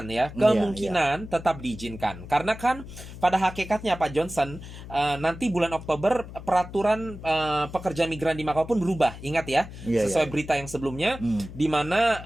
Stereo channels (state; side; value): noise; left; hum, 13 dB below the sound